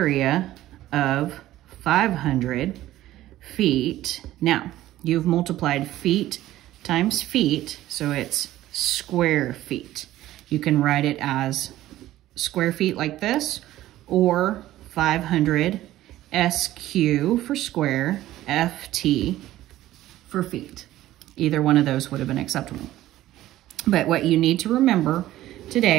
of 500 feet. Now, you've multiplied feet times feet, so it's square feet. You can write it as square feet like this, or 500 SQ for square, FT for feet. Either one of those would have been acceptable. But what you need to remember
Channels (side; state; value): left; quieter; 14.7 dB